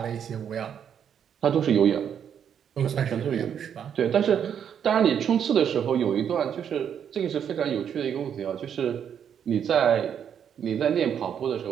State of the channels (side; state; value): left; quieter; 8.4 dB